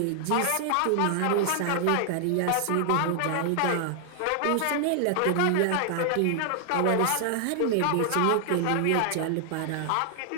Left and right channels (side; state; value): both; different; correlation 0.00